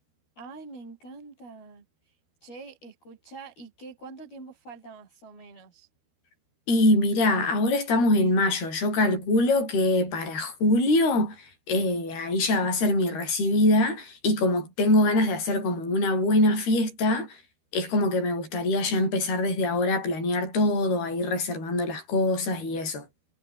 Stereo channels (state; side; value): late; right; 13 ms